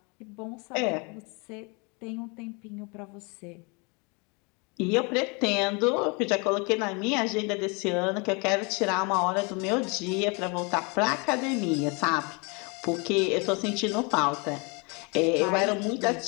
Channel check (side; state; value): right; quieter; 30.9 dB